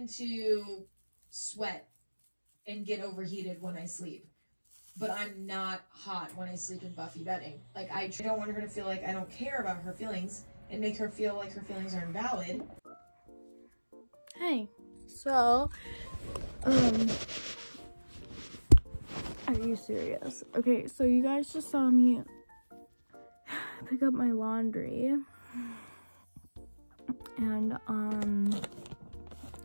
to sweat and get overheated when I sleep, but I'm not hot when I sleep in Buffy bedding. Like, I don't want her to feel like I don't care about her feelings and make her feel like her feelings are invalid. Hey, so, are you serious? Okay, so you guys just saw me pick up my laundry and,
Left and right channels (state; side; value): inverted; both; correlation -1.00